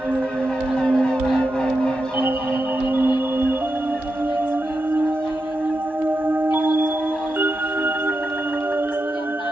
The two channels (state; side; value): normal; both; correlation 0.88